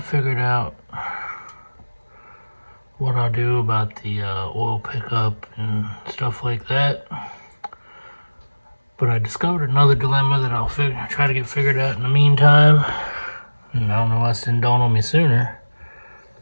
out what I'll do about the oil pickup and stuff like that. But I discovered another dilemma that I'll try to get figured out in the meantime. And I don't know why this didn't dawn on me sooner.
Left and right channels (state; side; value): inverted; both; correlation -1.00